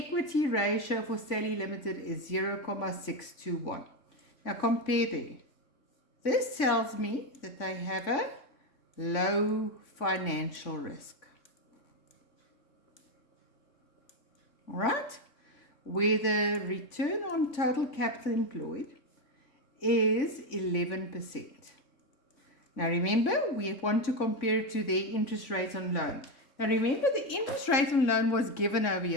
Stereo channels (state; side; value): late; right; 3.5 ms